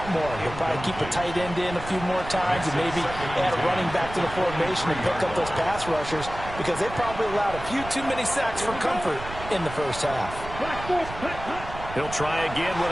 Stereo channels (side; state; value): right; noise; rumble, 11 dB below the sound